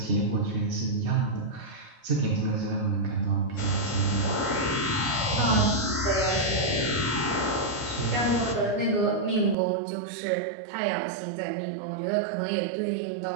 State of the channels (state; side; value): drops out; left; at 9.6 s